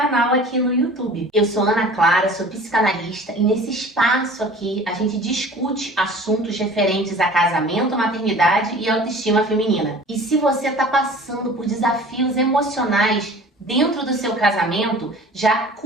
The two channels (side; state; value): both; normal; correlation 0.44